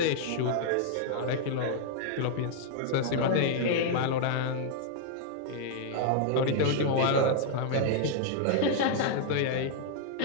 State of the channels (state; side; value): different; both; correlation 0.00